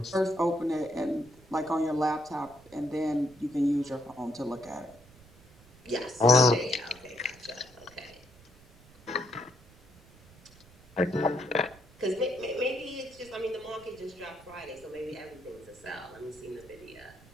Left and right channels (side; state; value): right; noise; rumble, 24 dB below the sound